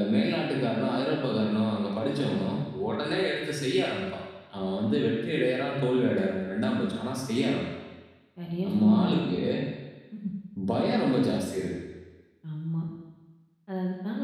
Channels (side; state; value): both; identical; correlation 1.00